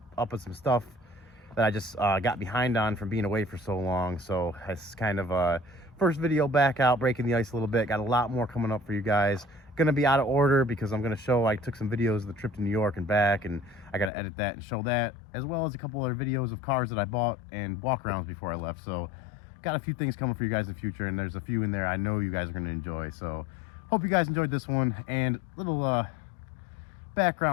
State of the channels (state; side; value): drops out; right; at 14.1 s